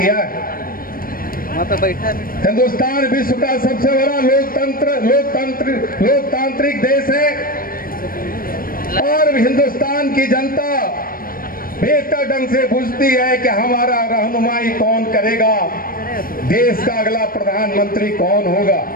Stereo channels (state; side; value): late; right; 0.41 ms